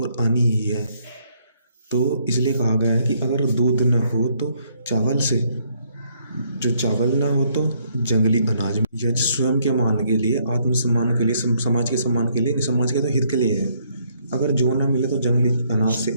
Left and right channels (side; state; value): both; inverted; correlation -0.69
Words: और आनी ही है। तो इसलिए कहा गया है कि अगर दूध न हो तो चावल से, जो चावल ना हो तो जंगली अनाज। यज्ञ स्वयं के मान के लिए, आत्मसम्मान के लिए, समाज के सम्मान के लिए, समाज के तो हित के लिए है। अगर जो ना मिले तो जंगली अनाज से,